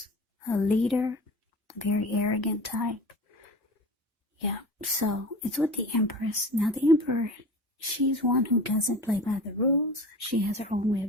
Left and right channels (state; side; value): normal; both; correlation 0.36